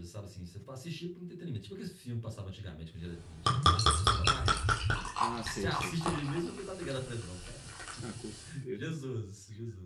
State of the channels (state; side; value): identical; both; correlation 1.00